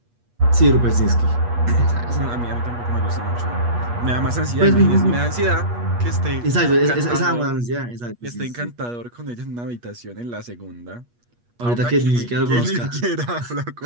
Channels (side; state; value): left; late; 8.4 ms